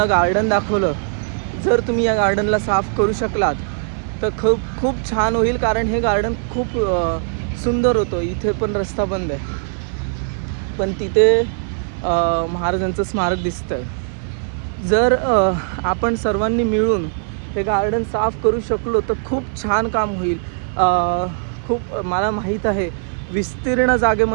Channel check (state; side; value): silent; left; 56 dB below the other